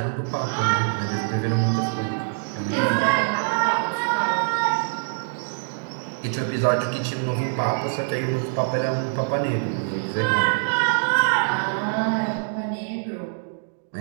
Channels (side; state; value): left; silent; digital silence